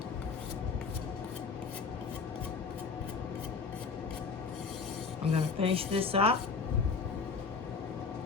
I'm going to finish this up.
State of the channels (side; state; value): right; quieter; 5.0 dB